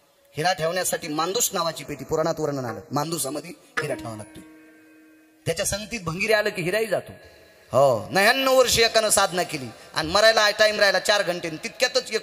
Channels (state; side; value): identical; both; correlation 1.00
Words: हिरा ठेवण्यासाठी मांदूस नावाची पेटी पुराणात वर्णन आलं, मांदुसामध्ये हिरा ठेवावा लागतो. त्याच्या संगतीत भंगिरी आलं की हिराही जातो. हो, 99 वर्ष एकानं साधना केली आणि मरायला टाइम राहिला 4 घंटे, तितक्यातच